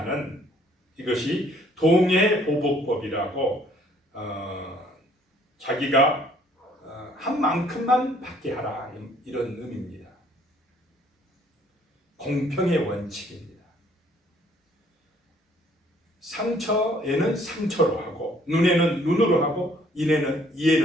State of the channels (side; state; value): both; normal; correlation 0.61